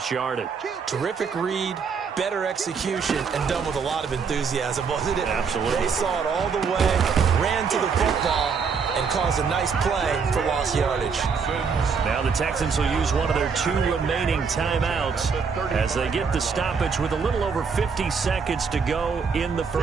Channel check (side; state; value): left; quieter; 5.7 dB